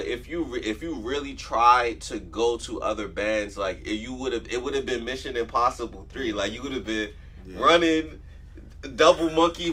if you really tried to go to other bands, like it would have been Mission Impossible 3. Like you would have been running, double monkey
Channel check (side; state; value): both; identical; correlation 1.00